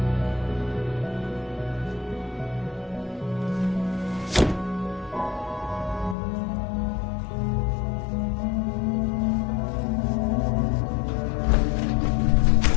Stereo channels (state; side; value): drops out; right; at 6.2 s